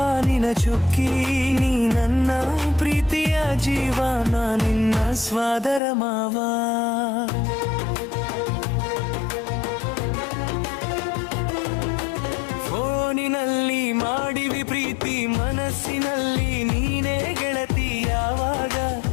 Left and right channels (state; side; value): drops out; right; at 5.8 s